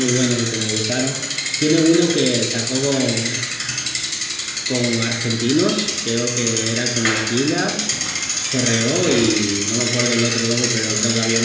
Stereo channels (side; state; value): both; identical; correlation 1.00